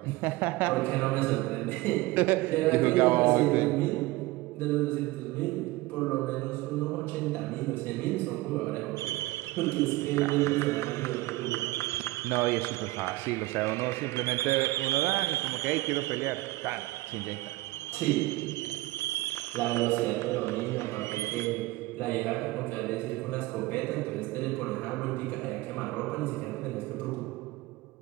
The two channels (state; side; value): quieter; left; 19.4 dB